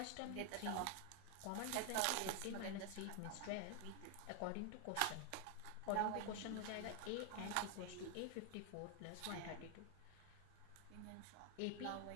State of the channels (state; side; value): different; both; correlation 0.00